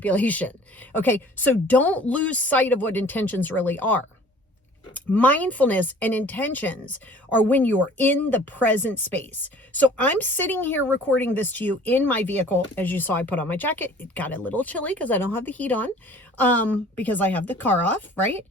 Okay. So don't lose sight of what intentions really are. Mindfulness and intentions are when you're in the present space. So I'm sitting here recording this to you in my vehicle. As you saw, I put on my jacket. It got a little chilly because I don't have the heat on, because I have the car off, right?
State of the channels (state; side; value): normal; both; correlation 0.50